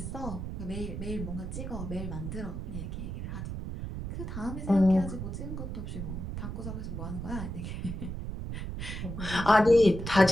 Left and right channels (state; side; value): noise; right; rumble, 6 dB below the sound